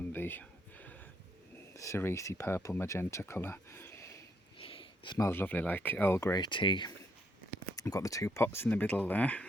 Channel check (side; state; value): both; normal; correlation 0.74